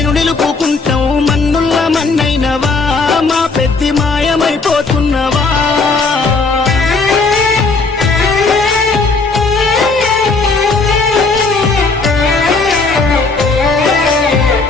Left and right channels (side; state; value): right; quieter; 4.0 dB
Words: నిలుపుకుంటాం మన్నుల్ల మన్నైనవా మా పెద్ది మాయమైపోతున్నవా